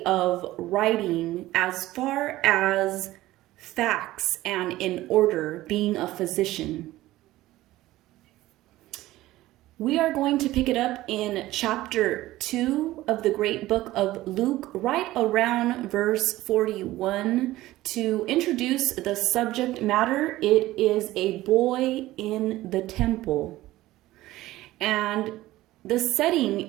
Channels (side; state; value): left; quieter; 16.5 dB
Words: of writing as far as facts and in order, being a physician. We are going to pick it up in chapter 2 of the great book of Luke, right around verse 41. To introduce the subject matter, it is a boy in the temple. And the